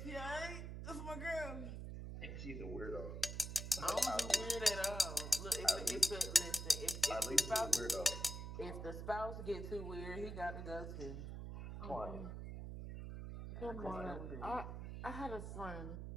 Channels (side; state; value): right; noise; hum, 6 dB below the sound